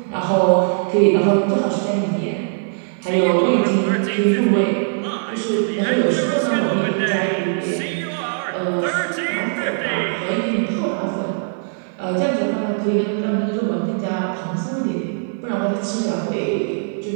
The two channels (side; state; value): left; silent; digital silence